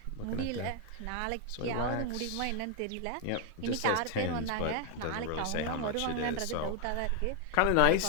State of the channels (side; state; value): both; different; correlation 0.00